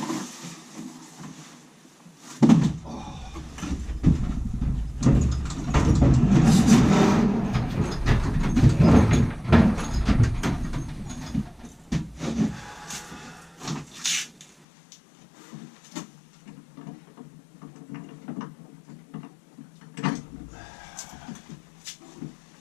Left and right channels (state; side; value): drops out; right; at 14.7 s